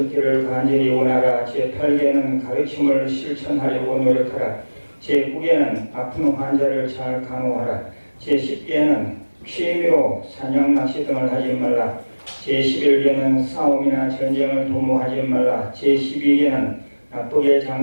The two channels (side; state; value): both; inverted; correlation -1.00